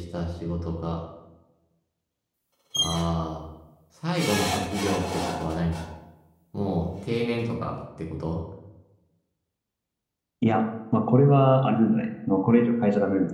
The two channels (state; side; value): identical; both; correlation 1.00